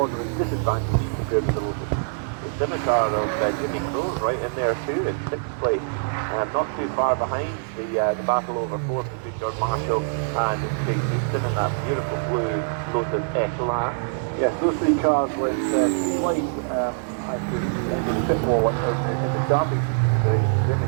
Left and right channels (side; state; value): left; silent; digital silence